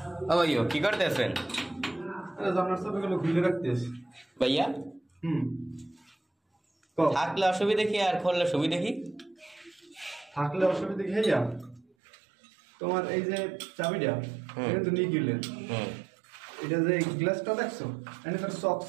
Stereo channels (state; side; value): drops out; left; at 11.9 s